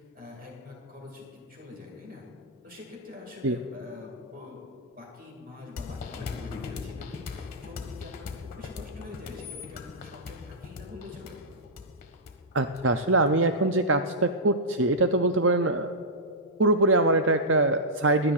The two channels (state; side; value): normal; both; correlation -0.13